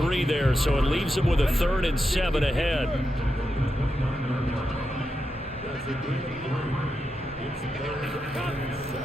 there, so it leaves him with a 3rd and 7 ahead.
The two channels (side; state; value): both; normal; correlation 0.87